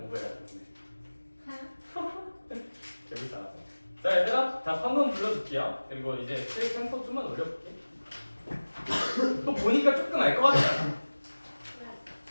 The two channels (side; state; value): both; inverted; correlation -1.00